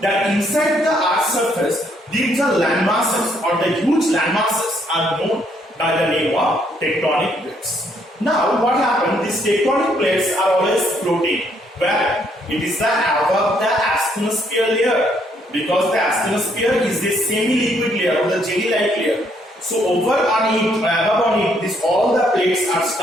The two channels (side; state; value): both; normal; correlation 0.70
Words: that inside the earth's surface these are land masses or the huge land masses are known by the name of tectonic plates. Now what happened? These tectonic plates are always floating where it is the above the asthenosphere layer, because the asthenosphere is the semi-liquid layer or the jelly-like layer. So over on it, above on it, this all the plates are